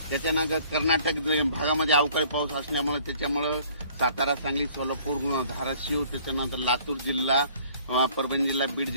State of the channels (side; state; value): both; inverted; correlation -0.56